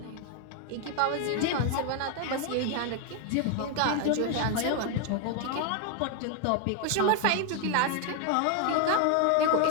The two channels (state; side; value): different; both; correlation 0.01